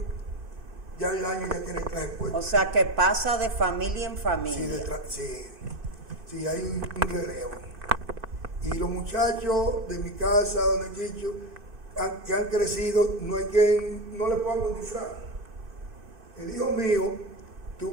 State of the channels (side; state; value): left; late; 2.6 ms